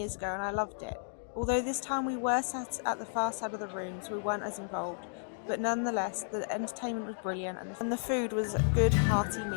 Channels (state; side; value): silent; right; digital silence